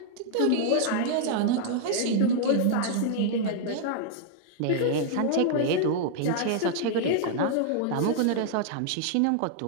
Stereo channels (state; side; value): different; both; correlation -0.01